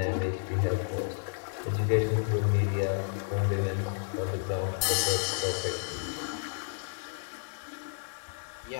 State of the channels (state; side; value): silent; right; 57 dB below the other